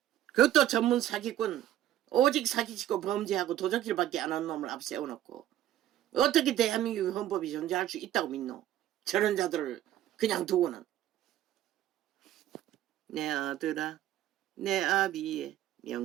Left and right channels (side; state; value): left; quieter; 12.6 dB